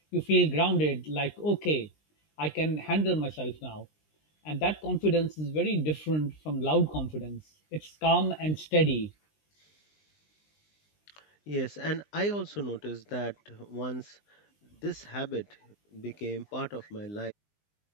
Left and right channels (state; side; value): late; right; 20 ms